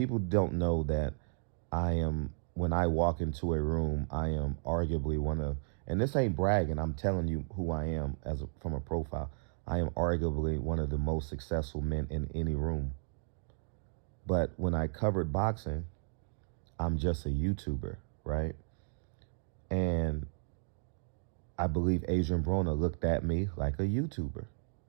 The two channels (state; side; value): silent; left; digital silence